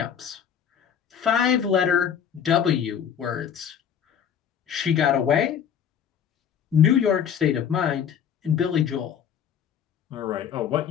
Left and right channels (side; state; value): right; quieter; 8.3 dB